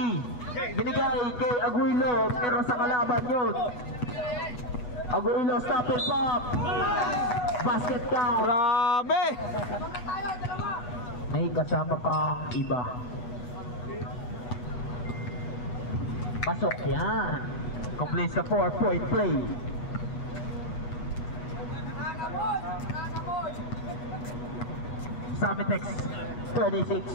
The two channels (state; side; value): late; right; 8.2 ms